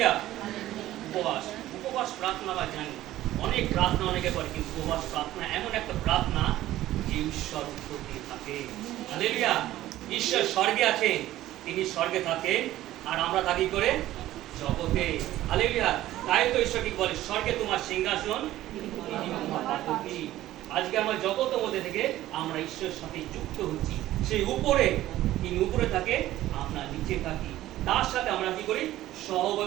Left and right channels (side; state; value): left; quieter; 14.7 dB